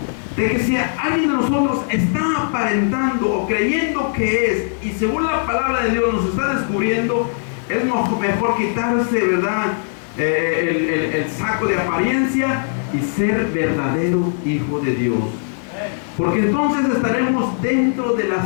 de que si alguien de nosotros está aparentando o creyendo que es, y según la palabra de Dios nos está descubriendo, es mejor quitarse, ¿verdad? El saco de apariencia y ser verdadero hijo de Dios. Porque entonces estaremos dentro de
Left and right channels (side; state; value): right; silent; digital silence